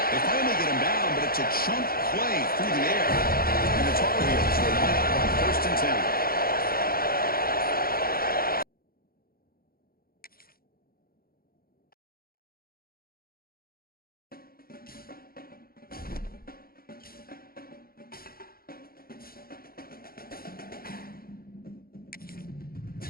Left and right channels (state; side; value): late; right; 0.43 ms